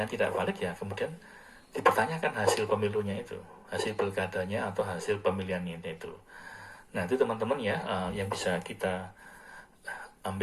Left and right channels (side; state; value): both; identical; correlation 1.00